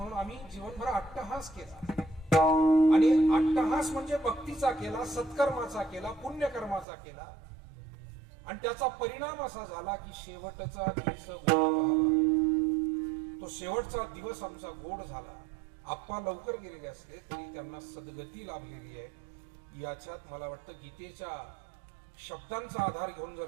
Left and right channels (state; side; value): drops out; left; at 6.9 s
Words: आम्ही जीवनभर अट्टहास केला. आणि अट्टहास म्हणजे भक्तीचा केला, सत्कर्माचा केला, पुण्यकर्माचा केला आणि त्याचा परिणाम असा झाला की शेवटचा दिवस तो शेवटचा दिवस आमचा गोड झाला. आप्पा लवकर गेलेले असले तरी त्यांना सद्गती लाभलेली आहे. याच्यात मला वाटतं गीतेच्या शब्दांचा आधार घेऊन